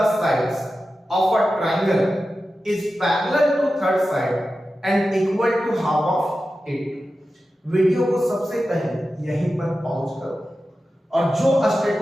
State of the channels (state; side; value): normal; both; correlation 0.93